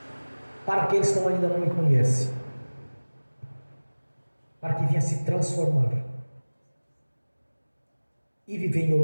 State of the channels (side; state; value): both; inverted; correlation -1.00